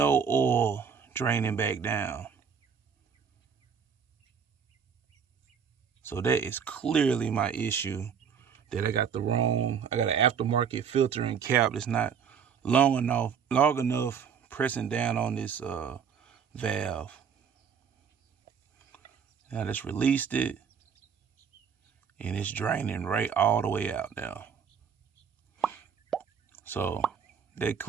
oil draining back down. So that is clearly my issue, that I got an aftermarket filter and cap that's not long enough pressing down on this valve. Now I just released it, and it's draining right all the way out now. So that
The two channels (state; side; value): quieter; left; 7.0 dB